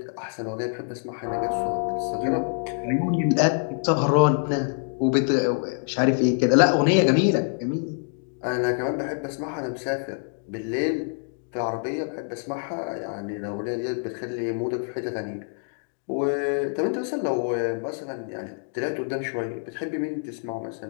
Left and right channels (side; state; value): right; silent; 61 dB below the other